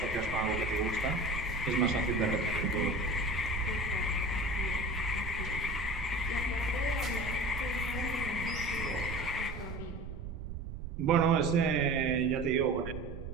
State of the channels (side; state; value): right; noise; rumble, 8 dB below the sound